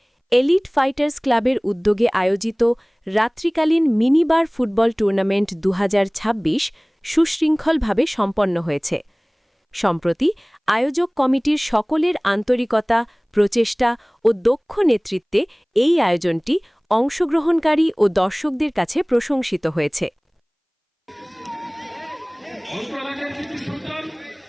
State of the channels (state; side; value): identical; both; correlation 1.00